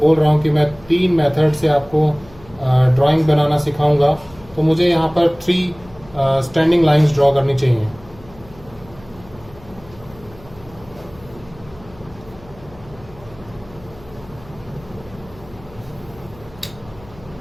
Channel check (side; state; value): left; noise; hum, 23 dB below the sound